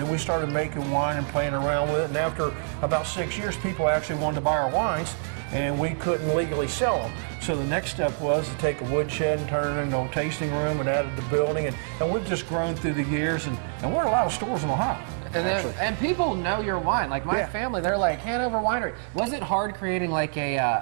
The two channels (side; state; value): left; silent; digital silence